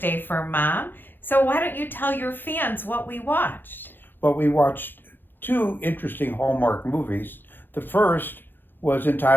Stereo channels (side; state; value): right; late; 0.096 ms